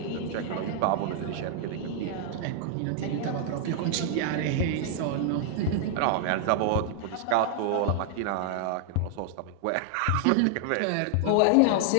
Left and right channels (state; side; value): different; both; correlation 0.00